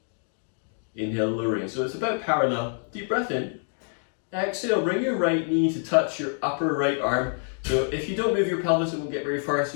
Inhale, lowering. So it's about parallel. Deep breath in. Exhale, bring your right knee to touch your upper right arm. So if you don't move your pelvis, it won't get very far.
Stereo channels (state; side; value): silent; right; 56 dB below the other